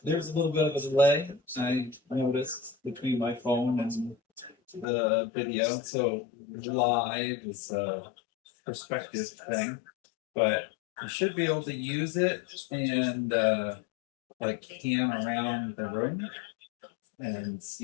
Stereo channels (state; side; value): drops out; right; at 4.9 s